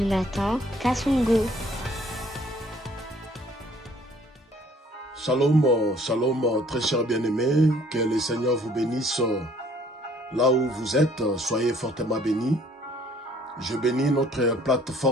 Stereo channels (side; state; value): both; normal; correlation 0.59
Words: Kassongo. Shalom, shalom, très chers bien-aimés, que le Seigneur vous bénisse là où vous êtes, soyez fortement bénis. Je bénis notre